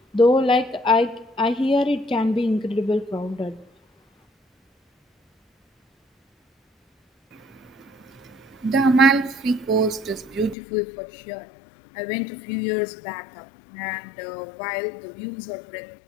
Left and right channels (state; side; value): drops out; right; at 10.6 s